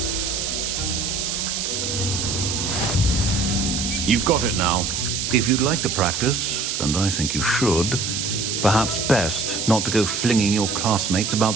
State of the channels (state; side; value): noise; right; hiss, 2 dB below the sound